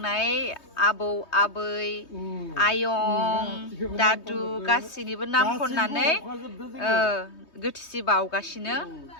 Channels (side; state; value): right; late; 3.2 ms